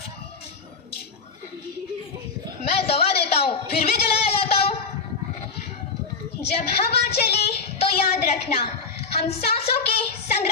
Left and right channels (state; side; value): quieter; right; 4.9 dB